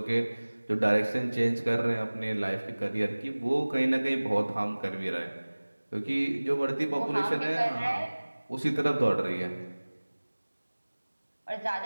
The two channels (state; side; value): inverted; both; correlation -1.00